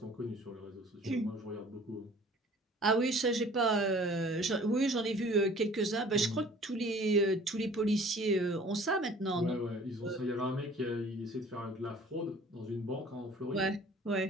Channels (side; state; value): both; normal; correlation 0.50